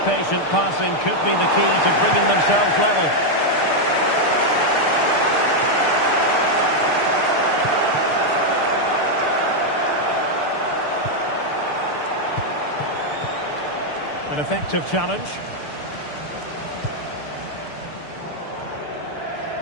patient passing could be the key to bringing themselves level. An effective challenge.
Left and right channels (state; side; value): late; right; 6.7 ms